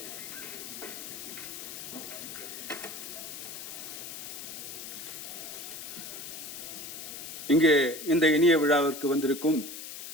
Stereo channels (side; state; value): left; noise; hiss, 9 dB below the sound